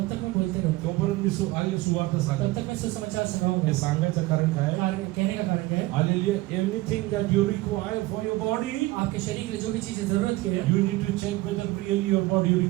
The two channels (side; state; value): left; quieter; 19.3 dB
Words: तक मैं बोलते रहूँ तोपर्यंत मी सुवार्ता तब सांगत तक मैं सुसमाचार हे सुनाऊंगा सांगायचं कारण काय कहने का कारण क्या है hallelujah anything that you require for your body आपके शरीर के लिए जो भी चीजें जरूरत की है you need to check whether really your body